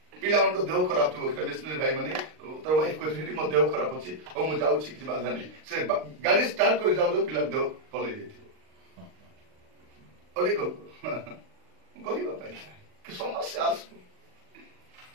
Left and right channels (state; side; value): late; left; 39 ms